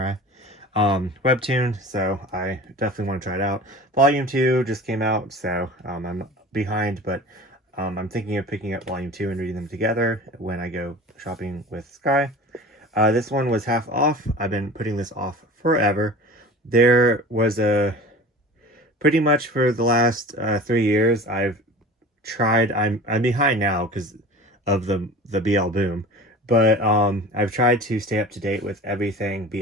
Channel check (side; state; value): both; normal; correlation 0.38